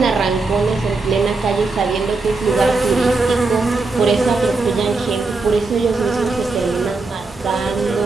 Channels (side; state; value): left; quieter; 3.7 dB